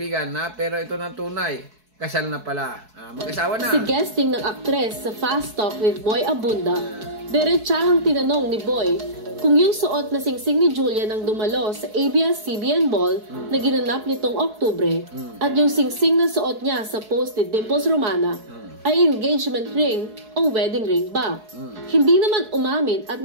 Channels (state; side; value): late; left; 4.6 ms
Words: Pero ito na tunay. Kasal na pala. Mag-asawa na. Si guesting ng aktres sa Fast Talk with Boy Abunda, diretsahang tinanong ni Boy kung yung suot na singsing ni Julia nang dumalo sa ABS-CBN Ball na ginanap nitong Oktubre at yung singsing na suot niya sa post ni Dimples Romana ay engagement ring o wedding ring ba? Hindi naman umamin at